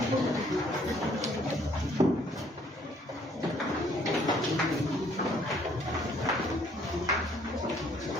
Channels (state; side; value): normal; both; correlation 0.63